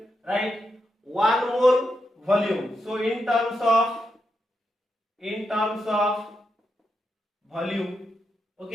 write 1 mole volume. So in terms of volume.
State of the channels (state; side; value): normal; both; correlation 0.84